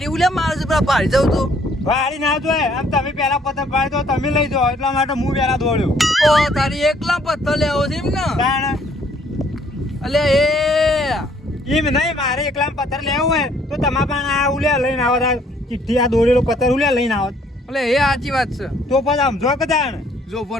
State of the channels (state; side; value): normal; both; correlation 0.63